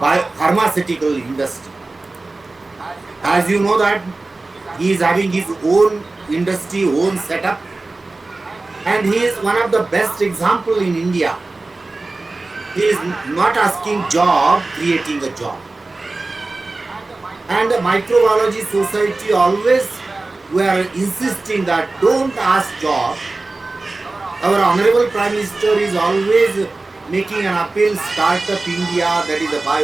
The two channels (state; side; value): quieter; left; 3.3 dB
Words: industry. As you know that he is having his own industry, own setup, and he is one of the best example in India. He is not asking job, creating a job. And the microbiology society always were insisting that don't ask job. Our Honorable Prime Minister is always making an appeal, Startup India, that is a